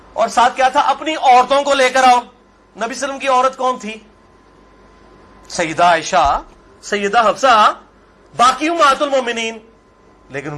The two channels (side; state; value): both; identical; correlation 1.00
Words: اور ساتھ کیا تھا؟ اپنی عورتوں کو لے کر آؤ. نبی صلی اللہ علیہ وسلم کی عورت کون تھی؟ سیدہ عائشہ، سیدہ حفصہ، باقی امہات المومنین. لیکن